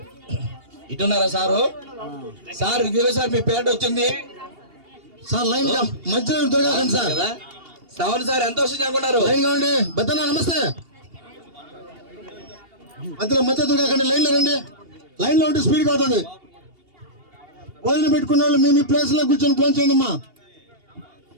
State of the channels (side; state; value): left; late; 2.8 ms